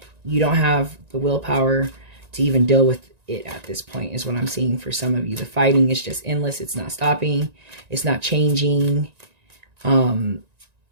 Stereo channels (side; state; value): left; late; 1.9 ms